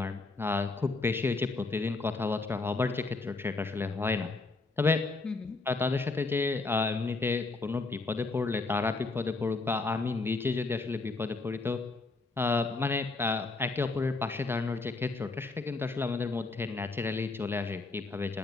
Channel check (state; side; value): quieter; right; 3.6 dB